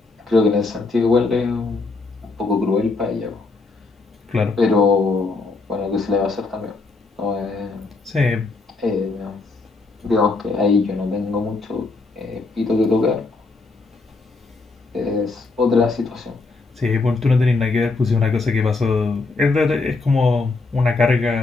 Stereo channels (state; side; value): quieter; right; 3.7 dB